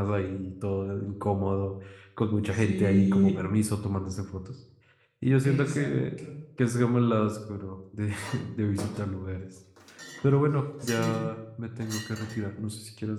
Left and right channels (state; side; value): identical; both; correlation 1.00